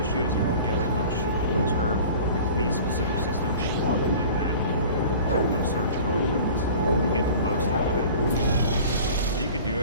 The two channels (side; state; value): both; inverted; correlation -0.43